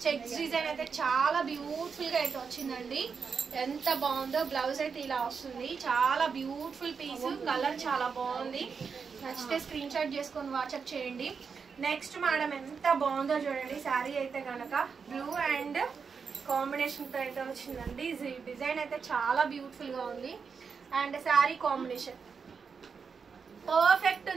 చెక్స్ డిజైన్ అయితే చాలా బ్యూటిఫుల్ గా అయితే వచ్చిందండి. ఎంత బాగుందో. బ్లౌజ్ అయితే ఇలా వస్తుంది. చాలా బ్యూటిఫుల్ పీస్. కలర్ చాలా బాగుంది. నచ్చితే స్క్రీన్ షాట్ చేసుకొని వాట్సాప్ చేయండి. నెక్స్ట్ మేడం ఎంత బాగుందో చూడండి శారీ అయితే కనుక. బ్లూ అండ్ కాంబినేషన్ తో అయితే వచ్చిందండి. డిజైన్ అయితే చాలా బ్యూటిఫుల్ గా ఉంది. అండ్ శారీ కాంబినేషన్ పర్ఫెక్ట్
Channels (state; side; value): quieter; left; 5.8 dB